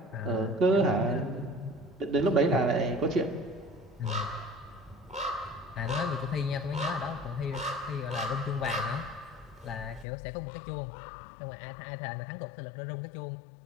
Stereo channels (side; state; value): right; drops out; at 10.1 s